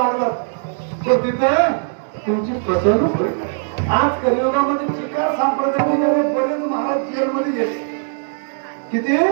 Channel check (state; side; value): silent; left; 66 dB below the other